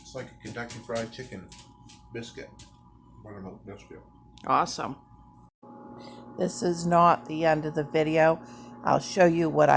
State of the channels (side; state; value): both; identical; correlation 1.00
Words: It's like a Kentucky Fried Chicken biscuit. Buttermilk biscuit. Awesome. This is not the end of the video. I'll show you what